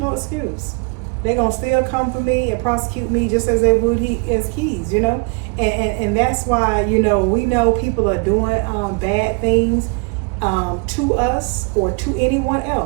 excuse. They're gonna still come for me and prosecute me just as they would as Keys, you know? And that's why, you know, we know people are doing bad things to us or to anyone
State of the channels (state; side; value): quieter; left; 33.6 dB